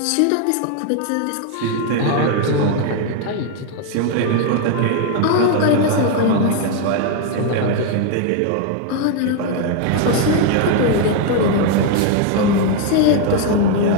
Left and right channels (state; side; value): different; both; correlation 0.01